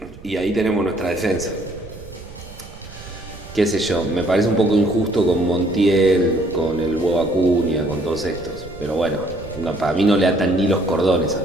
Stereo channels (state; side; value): noise; right; rumble, 17 dB below the sound